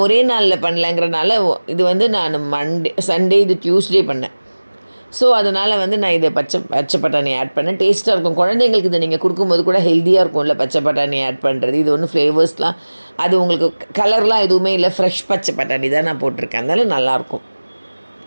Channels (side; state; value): both; inverted; correlation -1.00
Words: ஒரே நாளில் பண்ணலங்கிறனால இது வந்து நான் சண்டே இது டியூஸ்டே பண்ணேன். ஸோ அதனால் வந்து நான் இதை பச்சை பட்டாணி ஆட் பண்ணேன். டேஸ்ட்டாக இருக்கும். குழந்தைங்களுக்கு இதை நீங்கள் கொடுக்கும்போது கூட ஹெல்த்தியாக இருக்கும்ல பச்சை பட்டாணி ஆட் பண்ணுறது. இது ஒன்றும் ஃப்ளேவர்ஸ்லாம் அது உங்களுக்கு கலர்லாம் எதுவுமே இல்லை, ஃப்ரெஷ் பச்சை பட்டாணி தான் நான் போட்டிருக்கேன். அதனால் நல்லாயிருக்கும்.